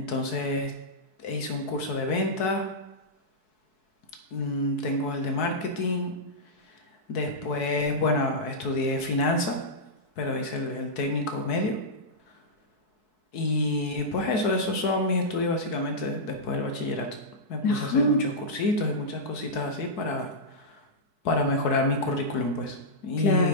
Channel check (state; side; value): late; right; 4.6 ms